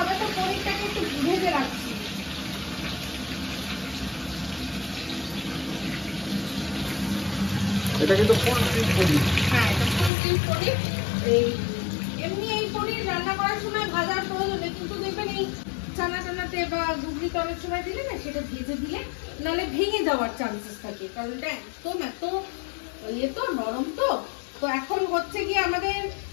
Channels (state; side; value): drops out; right; at 10.1 s